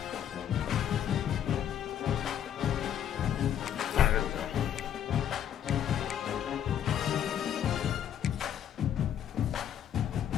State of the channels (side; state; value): right; quieter; 9.8 dB